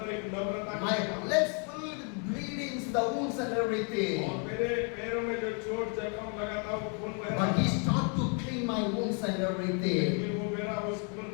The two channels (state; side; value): quieter; right; 38.6 dB